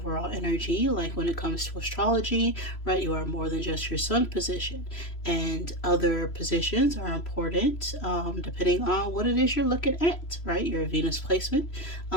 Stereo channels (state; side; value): late; right; 3.0 ms